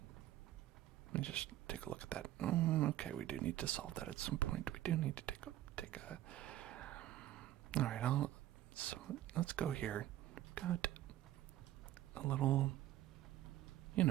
let me just take a look at that. Okay, we do need to solve that at some point. We do need to take a. All right, so let's go here. Got a little,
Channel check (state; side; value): quieter; left; 13.5 dB